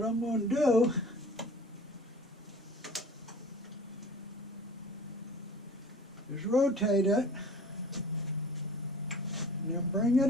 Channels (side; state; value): both; normal; correlation 0.44